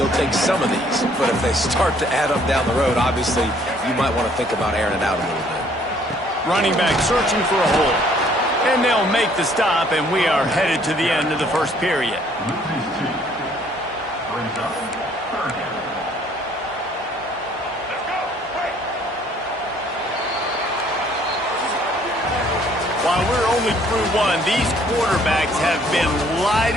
take some of these. But if they start to add up down the road, obviously you might want to think about airing it out a little bit. Running back searching for a hole. And they'll make the stop, and we are headed to the end of the first period. While we're only through one, these quarterbacks have been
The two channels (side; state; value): both; normal; correlation 0.61